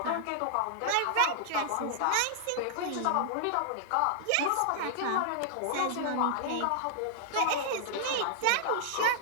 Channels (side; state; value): both; different; correlation -0.01